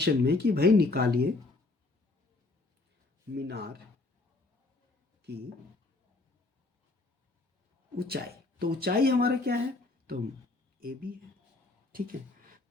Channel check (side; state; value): right; quieter; 3.3 dB